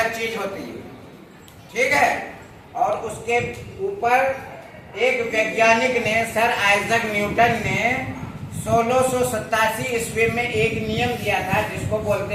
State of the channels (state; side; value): identical; both; correlation 1.00